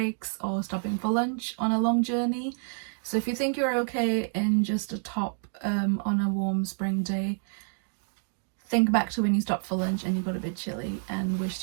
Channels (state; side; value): silent; left; 59 dB below the other